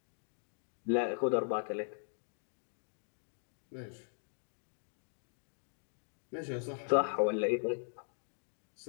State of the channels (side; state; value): right; silent; digital silence